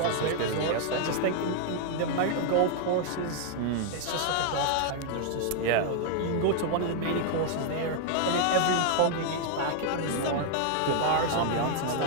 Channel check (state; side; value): different; both; correlation 0.00